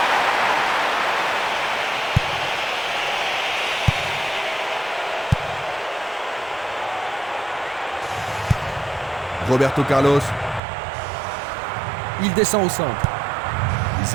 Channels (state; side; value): drops out; left; at 10.6 s